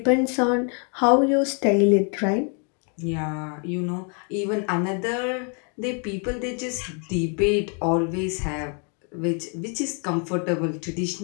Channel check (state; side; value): quieter; right; 38.9 dB